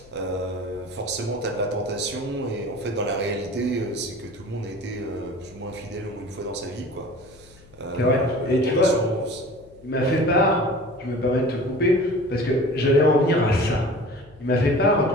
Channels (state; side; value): noise; left; hum, 25 dB below the sound